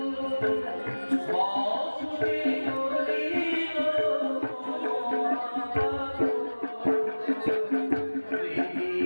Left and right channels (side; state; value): both; inverted; correlation -1.00